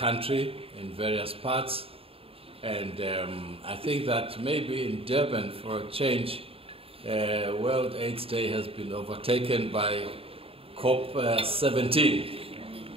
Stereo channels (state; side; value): late; left; 0.27 ms